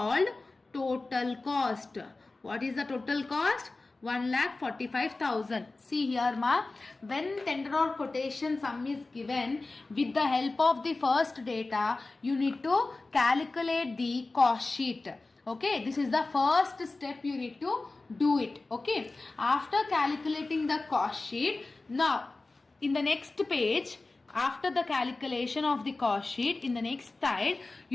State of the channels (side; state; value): right; quieter; 3.3 dB